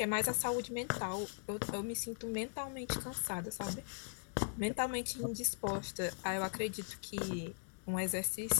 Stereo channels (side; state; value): right; silent; digital silence